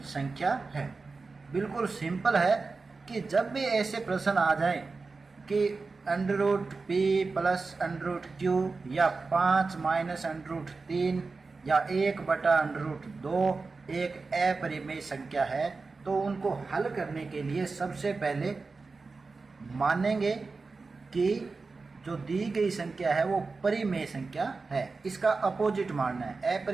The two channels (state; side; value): quieter; left; 4.1 dB